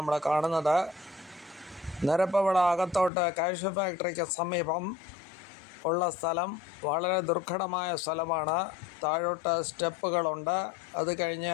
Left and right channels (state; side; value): drops out; right; at 3.1 s